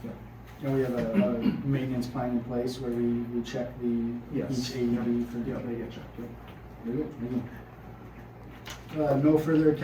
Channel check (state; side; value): identical; both; correlation 1.00